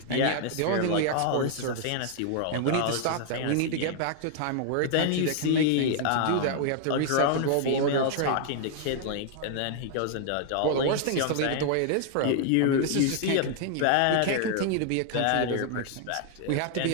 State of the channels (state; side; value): different; both; correlation -0.01